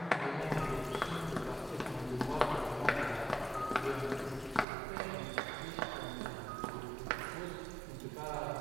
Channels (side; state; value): left; drops out; at 4.7 s